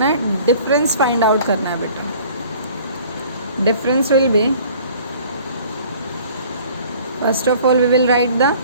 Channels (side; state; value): both; inverted; correlation -0.51